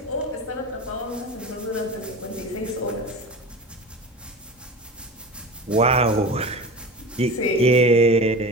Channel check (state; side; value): normal; both; correlation 0.32